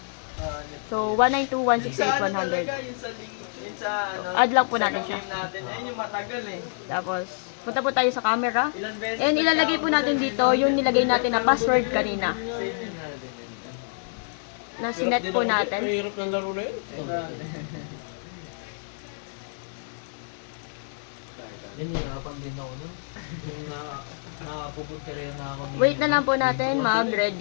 So, 192.168.100. Yun sa ano. Add lang po natin siya. Game natin. Ayun yung matagal eh. Tapos, punta po tayo sa camera. Ilan beses And ilalagay po natin dito yung nilagay natin na password kanina. Na sinet po natin. Mahirap ng laro na yun. Yan, nahirapan din ako nun. Yung nakapupunta rin na ako. Wait na lang po natin mag-read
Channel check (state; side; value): silent; right; 56 dB below the other